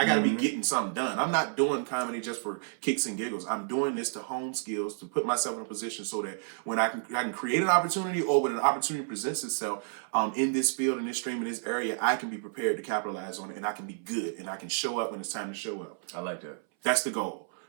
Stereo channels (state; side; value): silent; left; 57 dB below the other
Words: got to be getting something done. I'm not doing comedy just for kicks and giggles. I'm doing this to hone skills, to put myself in a position so that when I can create an opportunity, or when an opportunity presents itself in this field, in this stream, in this area, I can be prepared to capitalize on it, and I can be good, and I can show up when it's time to show up. I like that. That's the goal.